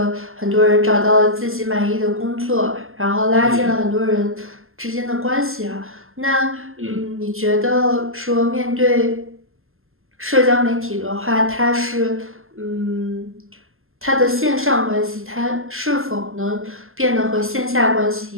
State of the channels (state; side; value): late; left; 0.61 ms